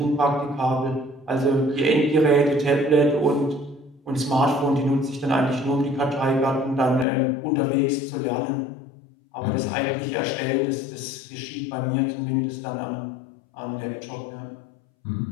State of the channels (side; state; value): right; drops out; at 7.1 s